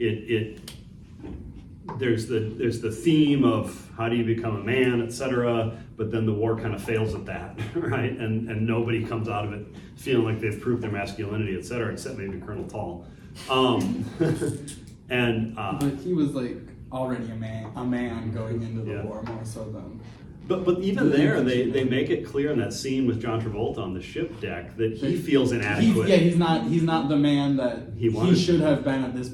there's the theme of how do you become a man, etc. But then the war kind of fails at that, right? And nobody comes out of it feeling like they've proved their masculinity, etc. Except maybe Colonel Tall. But he was like already a man going into the war more so than. But even there, they make it clear in that scene with John Travolta on the ship deck that he feels inadequate. He's not the man that he should have been at this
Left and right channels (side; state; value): both; identical; correlation 1.00